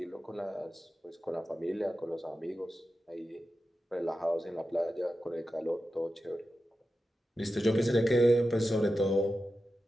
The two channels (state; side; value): normal; both; correlation 0.92